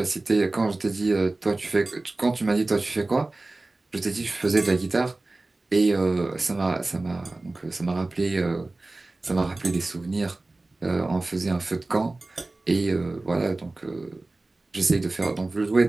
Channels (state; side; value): quieter; left; 3.1 dB